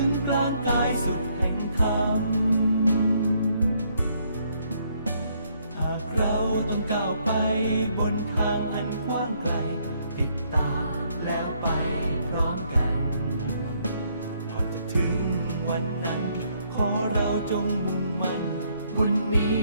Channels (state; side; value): inverted; both; correlation -0.70